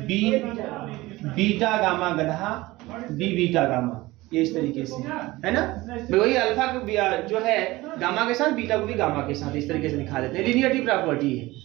बीटा गामा गधा बी बीटा गामा, ये इस तरीके से है ना। वही अल्फा को जो है गामा के साथ, बीटा को भी गामा के साथ, इस तरीके से दिखा देते हैं। लिनियरिटी प्रॉपर्टी है।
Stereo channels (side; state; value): left; quieter; 19.5 dB